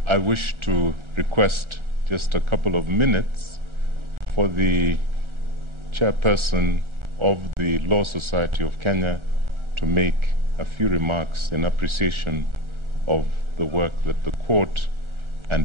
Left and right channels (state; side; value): late; left; 1.4 ms